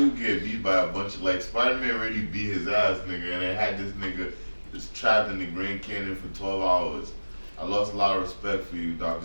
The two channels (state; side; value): inverted; both; correlation -1.00